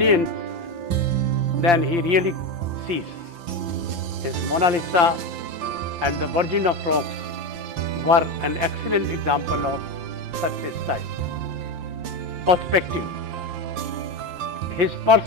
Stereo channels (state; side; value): late; left; 5.8 ms